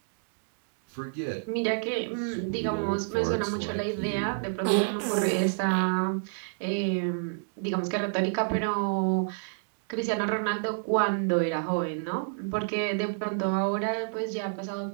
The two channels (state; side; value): silent; left; digital silence